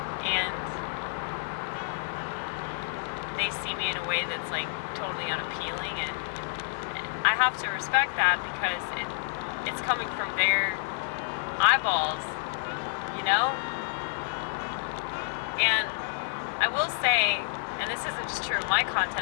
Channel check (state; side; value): silent; right; digital silence